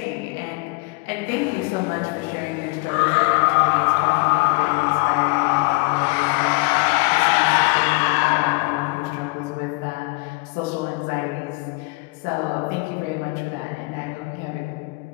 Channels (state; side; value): quieter; right; 27.5 dB